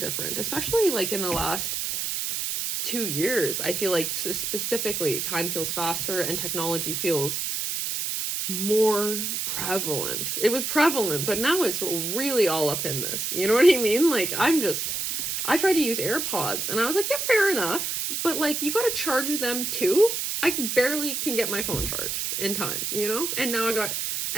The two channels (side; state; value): right; noise; hiss, 2 dB below the sound